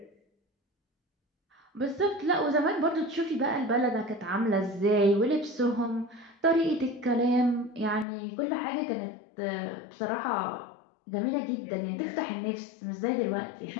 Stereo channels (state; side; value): drops out; right; at 8.1 s